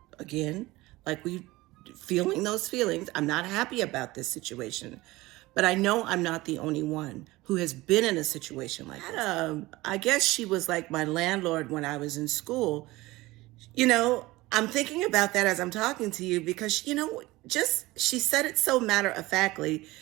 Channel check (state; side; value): quieter; left; 19.7 dB